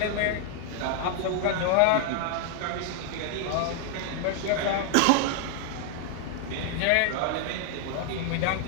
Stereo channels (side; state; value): both; different; correlation -0.01